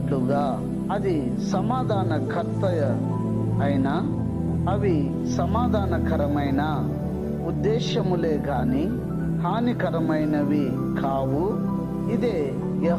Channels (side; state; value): both; identical; correlation 1.00